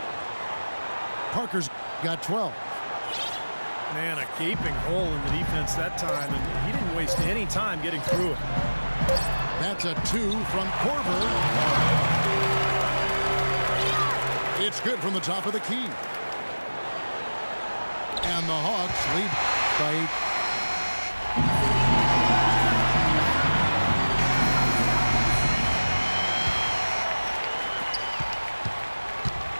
Parker's got 12. Man, a gaping hole in the defense that time, and he didn't waste any time getting through it. That's a 2 from Korver. It's good from the top of the key. And the Hawks lead by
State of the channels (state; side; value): inverted; both; correlation -1.00